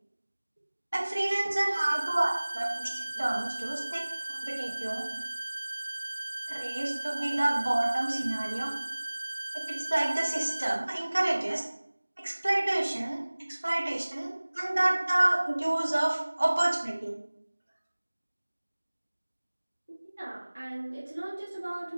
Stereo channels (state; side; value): inverted; both; correlation -1.00